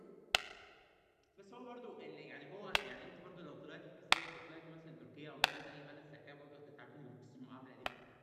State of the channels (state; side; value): identical; both; correlation 1.00